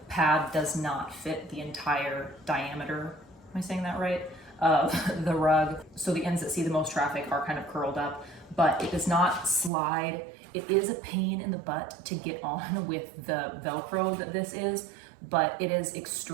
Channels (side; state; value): left; drops out; at 9.7 s